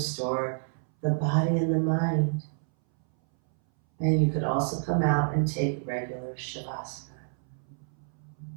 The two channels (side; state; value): left; silent; 59 dB below the other